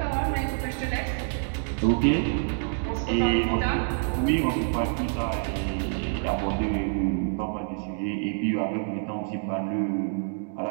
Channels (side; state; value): left; silent; digital silence